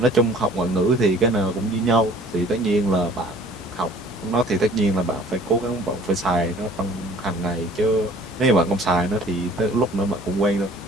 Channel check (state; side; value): normal; both; correlation 0.52